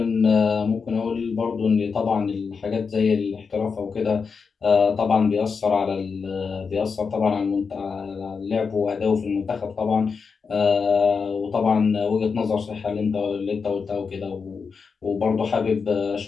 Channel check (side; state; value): right; quieter; 5.4 dB